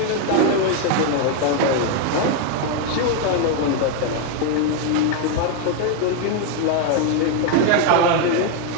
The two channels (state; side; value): different; both; correlation 0.01